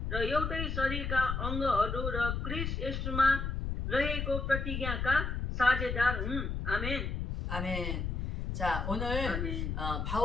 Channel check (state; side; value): noise; left; rumble, 2 dB below the sound